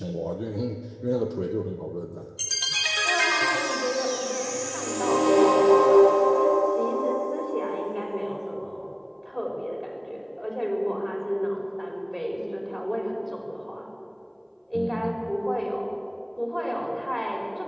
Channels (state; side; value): identical; both; correlation 1.00